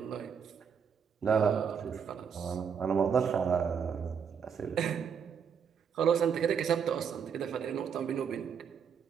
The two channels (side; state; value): left; quieter; 7.0 dB